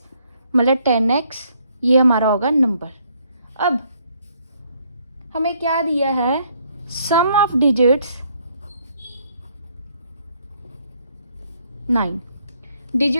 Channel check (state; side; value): inverted; both; correlation -0.68